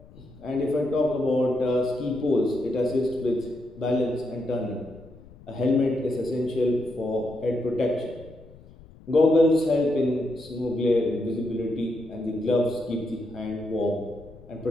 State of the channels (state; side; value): noise; left; rumble, 22 dB below the sound